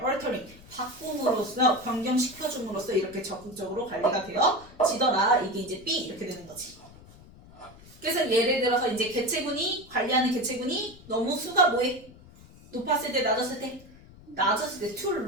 altering 바꿈으로써 변경시켜줌으로써 이렇게 적극적으로 관리가 되어지더라. 이게 이제 B 이렇게 되는 거지. 그래서 예를 들어서 이제 개체군이 관리하는 개체군이 너무 수가 뭐해? 높았을 때 낮았을 때 낮았을 때 too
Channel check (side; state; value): left; noise; rumble, 22 dB below the sound